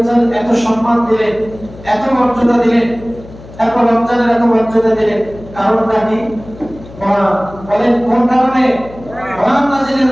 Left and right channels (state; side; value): noise; left; hum, 18 dB below the sound